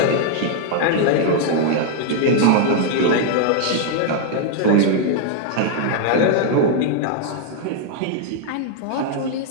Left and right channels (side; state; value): both; different; correlation 0.00